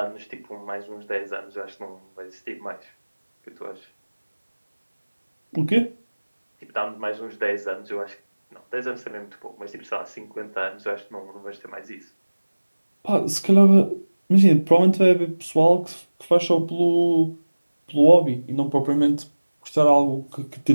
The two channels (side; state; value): both; inverted; correlation -1.00